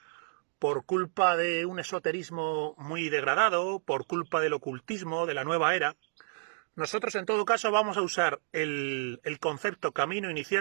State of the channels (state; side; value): silent; left; digital silence